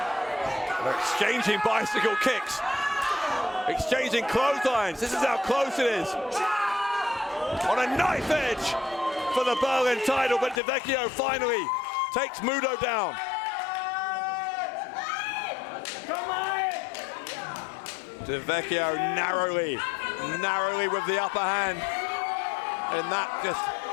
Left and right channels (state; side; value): drops out; right; at 10.6 s